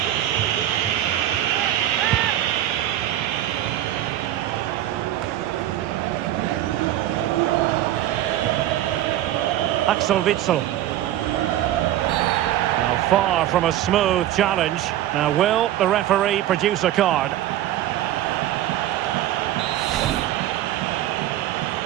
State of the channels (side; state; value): left; quieter; 13.1 dB